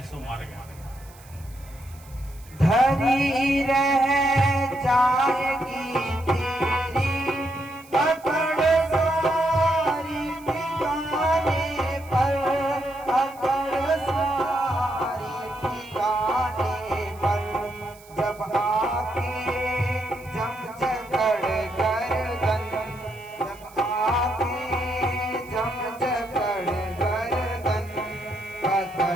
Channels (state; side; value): noise; right; hiss, 24 dB below the sound